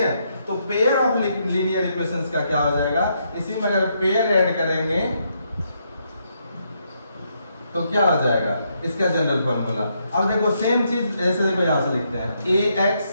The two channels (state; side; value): inverted; both; correlation -0.77